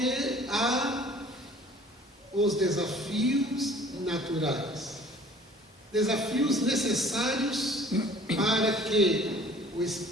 há os desafios naturais, desafios necessários para que o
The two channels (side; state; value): both; normal; correlation 0.50